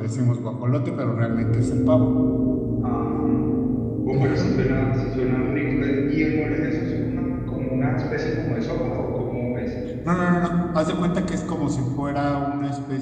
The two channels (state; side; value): identical; both; correlation 1.00